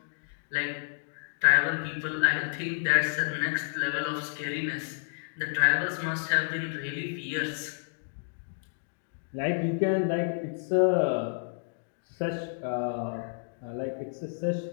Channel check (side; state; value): right; silent; digital silence